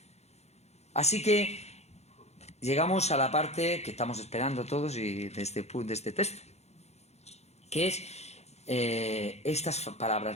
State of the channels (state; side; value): late; right; 0.31 ms